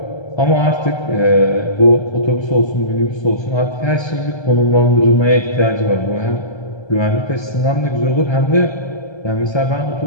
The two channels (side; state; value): right; late; 1.3 ms